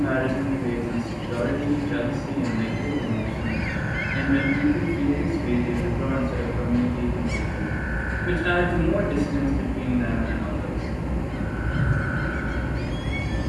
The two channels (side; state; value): both; identical; correlation 1.00